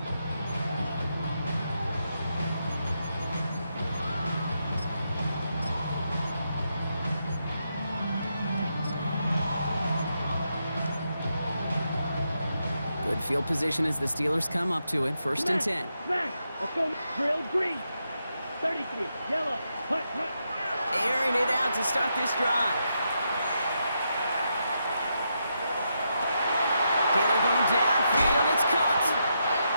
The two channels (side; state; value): both; inverted; correlation -0.83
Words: Good field position as the Steelers come up to it, 1st and 10. Smash. Let's go. Drill green. 33. Yellow. Hut. Airing it out to start this drive. Taylor going downfield, it's caught.